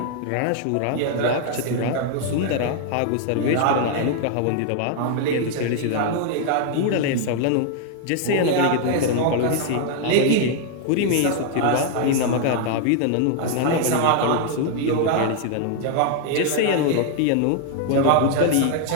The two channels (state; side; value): different; both; correlation 0.00